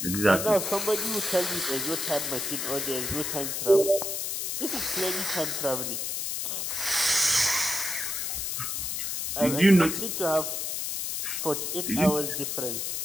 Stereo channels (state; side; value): noise; left; hiss, 2 dB below the sound